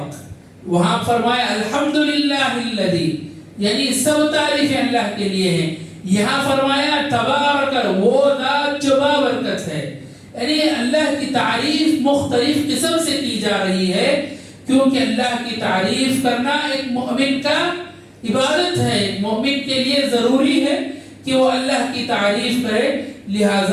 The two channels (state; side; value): identical; both; correlation 1.00